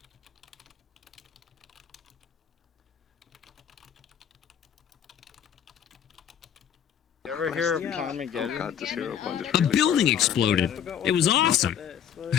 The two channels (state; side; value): quieter; right; 9.1 dB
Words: You ever hear of Carmageddon? Oh god, this hero point is A building exploded. It was awesome.